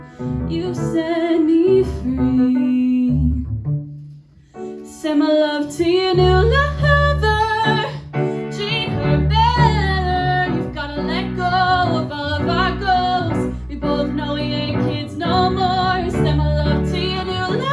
You set me free. Send my love to your new lover. Treat her better. You've gotta let go of all of our goals. We both know we ain't kids no more. Send my love to your new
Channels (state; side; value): identical; both; correlation 1.00